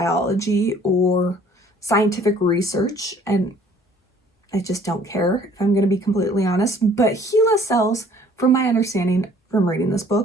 or scientific research, and I just don't care, if I'm going to be completely honest. But HeLa cells, from my understanding from reading this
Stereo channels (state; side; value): normal; both; correlation 0.56